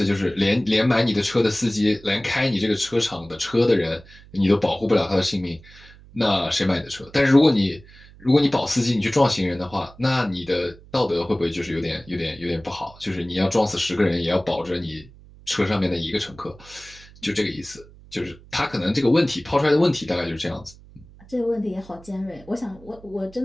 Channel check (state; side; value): noise; right; hum, 22 dB below the sound